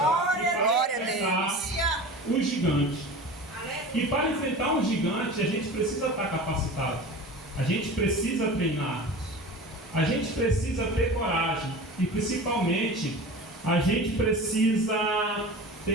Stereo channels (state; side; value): normal; both; correlation 0.35